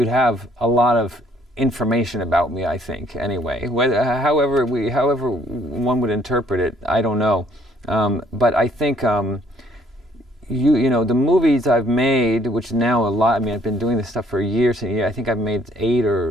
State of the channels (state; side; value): normal; both; correlation 0.63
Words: have a lot of information about me, I think, anyway. However one would interpret it, I don't know. But I think you know, the movies I've made, which now a lot, I mean, I've been doing this stuff for years and I think I've made 8